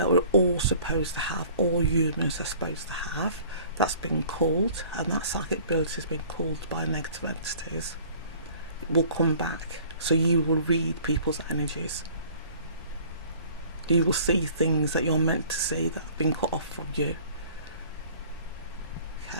we're all supposed to have, all humans are supposed to have, that's been called, and that psychic ability has been called by negative entities, it will come back. So you will read people's energies. You will see things that you're meant to see that have been cut off from you.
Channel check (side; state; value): both; inverted; correlation -0.50